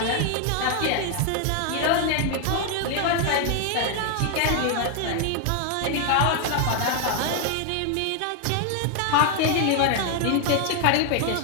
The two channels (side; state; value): both; different; correlation 0.00